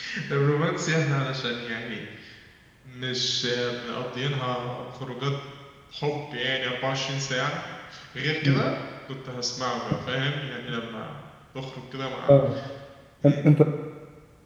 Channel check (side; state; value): both; identical; correlation 1.00